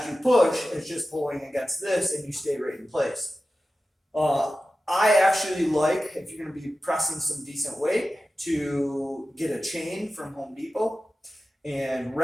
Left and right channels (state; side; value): normal; both; correlation 0.94